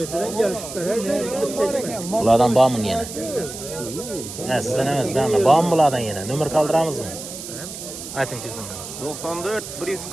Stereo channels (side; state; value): right; noise; hiss, 10 dB below the sound